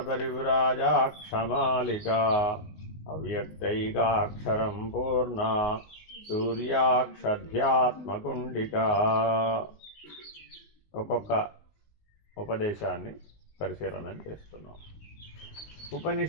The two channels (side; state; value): right; late; 19 ms